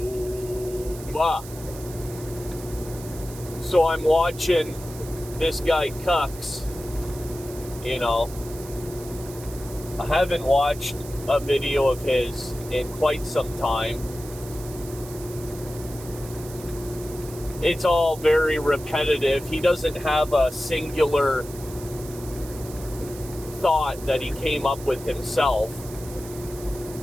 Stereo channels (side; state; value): right; noise; hiss, 16 dB below the sound